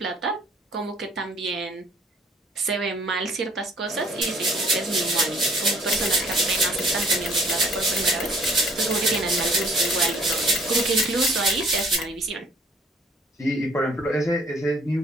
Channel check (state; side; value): normal; both; correlation 0.58